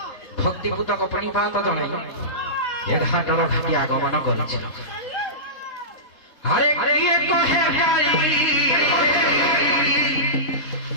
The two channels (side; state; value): right; late; 3.7 ms